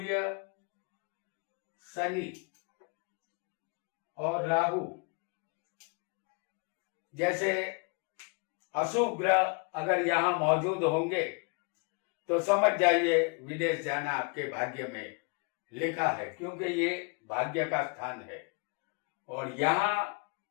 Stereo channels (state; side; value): quieter; right; 34.0 dB